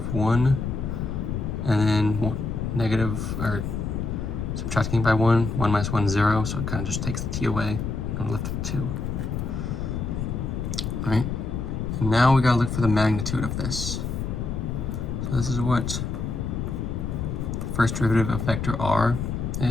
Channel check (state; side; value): noise; left; rumble, 3 dB below the sound